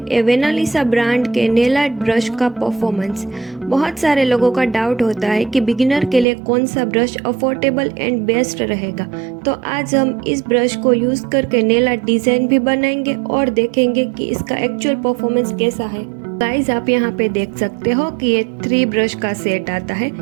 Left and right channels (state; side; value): drops out; left; at 6.2 s